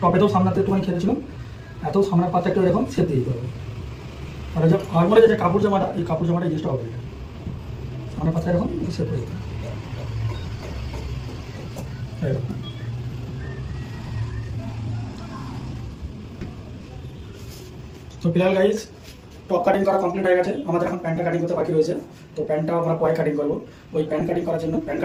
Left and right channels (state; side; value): identical; both; correlation 1.00